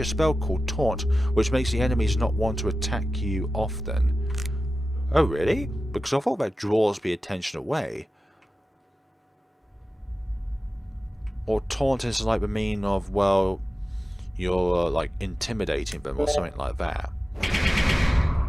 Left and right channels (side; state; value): both; normal; correlation 0.94